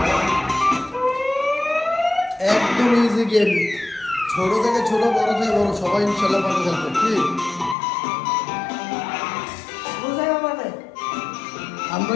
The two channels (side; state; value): right; drops out; at 7.8 s